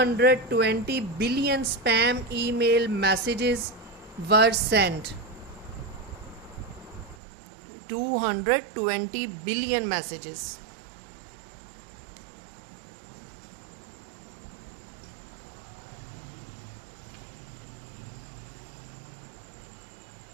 billion spam email messages were sent. 220 billion messages.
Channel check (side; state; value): left; drops out; at 7.2 s